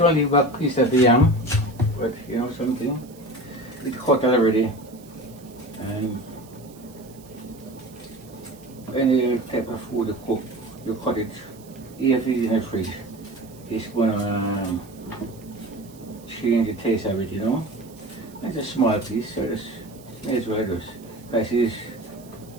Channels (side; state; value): right; noise; hiss, 24 dB below the sound